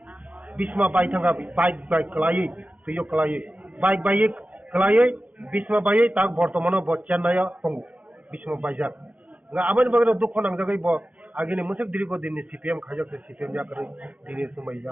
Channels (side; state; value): left; late; 0.071 ms